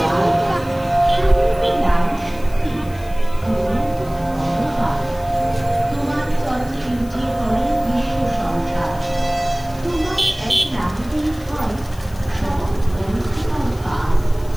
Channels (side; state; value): left; noise; hiss, 23 dB below the sound